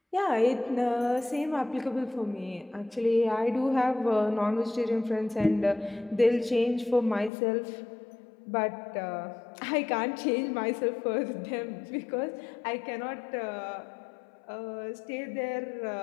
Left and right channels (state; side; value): drops out; right; at 7.3 s